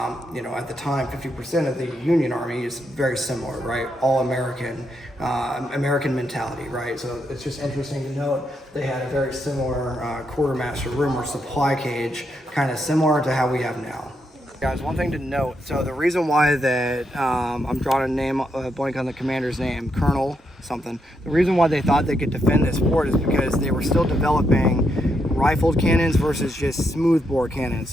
you know, at the time, 50% of the Union Army is very similar, right? All American, American mentality, right? So it's just interesting to note they had a very similar quartermaster room or supply cage, kind of similar to how we have now. Guys, one thing to note, so the reason why that I'm drawing a name, blank on the commander's name, Colonel something, the reason why they thought they could defend this fort is because they were still developing rifled cannons versus just smoothbore cannons.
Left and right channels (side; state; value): both; normal; correlation 0.80